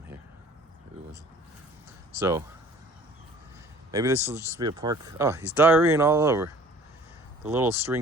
here. Maybe it was. So maybe this will just be a park. Oh, he's diarrheaing all over. The little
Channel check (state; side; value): normal; both; correlation 0.50